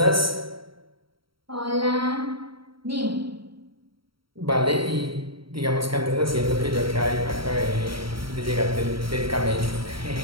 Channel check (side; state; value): left; late; 0.74 ms